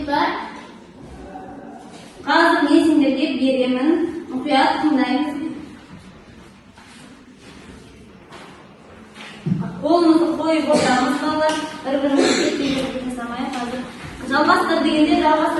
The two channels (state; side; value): identical; both; correlation 1.00